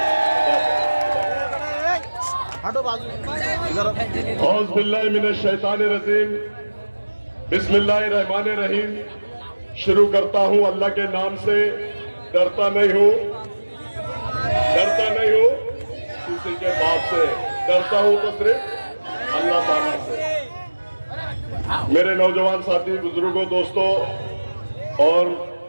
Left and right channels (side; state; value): both; inverted; correlation -1.00